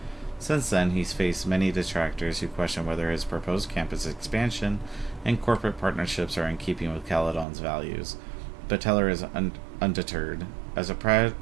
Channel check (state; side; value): drops out; left; at 7.5 s